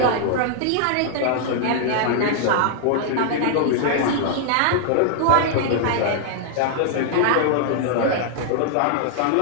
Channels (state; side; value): different; both; correlation -0.01